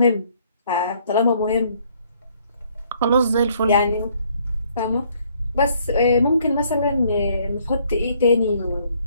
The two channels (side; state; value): both; inverted; correlation -0.65